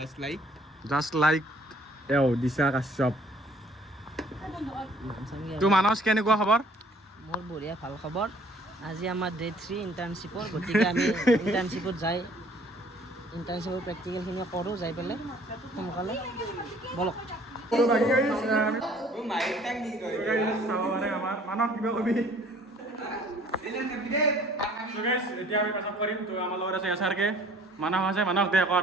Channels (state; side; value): normal; both; correlation 0.57